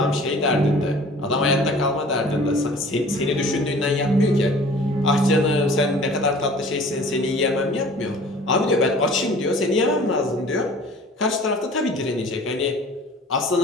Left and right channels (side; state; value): both; normal; correlation 0.47